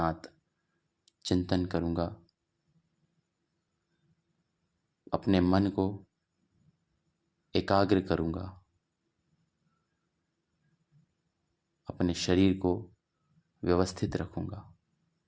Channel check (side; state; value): both; identical; correlation 1.00